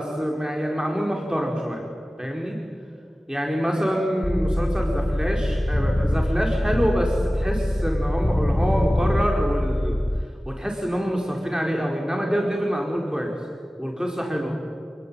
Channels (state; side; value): normal; both; correlation 0.97